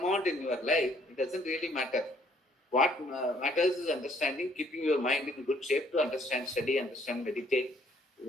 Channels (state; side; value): normal; both; correlation 0.63